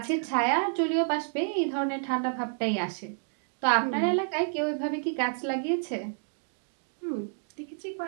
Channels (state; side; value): silent; left; digital silence